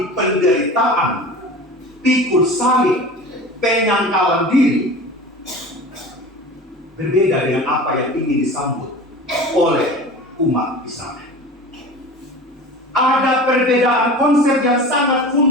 penderitaan, pikul salib, penyangkalan diri, berbeda dengan apa yang ingin disambut oleh umat Israel. Ada perbedaan konsep yang sangat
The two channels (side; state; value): both; normal; correlation 0.36